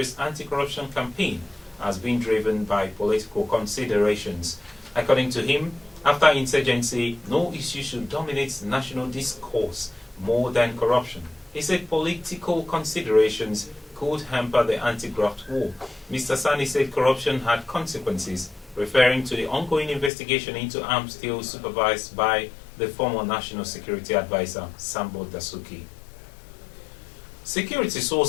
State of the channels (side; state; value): right; drops out; at 20.1 s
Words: anti-corruption campaign as being driven by political considerations. According to him, after insurgency, no issue should dominate national discourse more than corruption. He said political considerations could hamper the anti-graft war. Mr. Sonny said corruption had consequences, referring to the ongoing investigation into arms deals supervised by the former National Security Advisor, Sambo Dasuki. Security